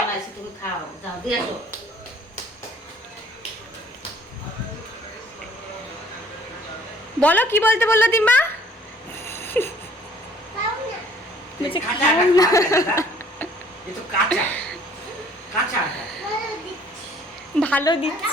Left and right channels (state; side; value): normal; both; correlation 0.57